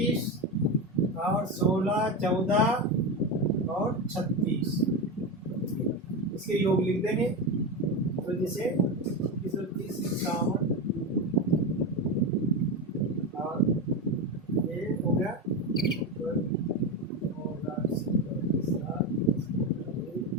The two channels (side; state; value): both; normal; correlation 0.17